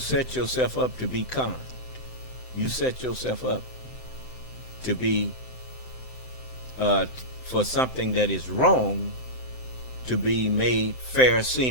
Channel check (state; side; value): late; right; 7.8 ms